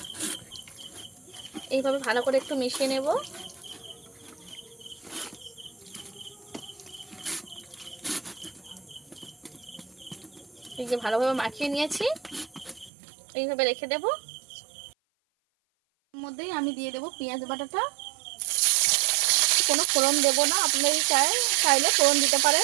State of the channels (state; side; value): drops out; left; at 12.9 s